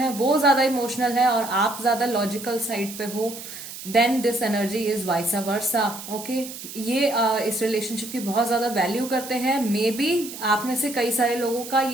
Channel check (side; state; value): right; noise; hiss, 12 dB below the sound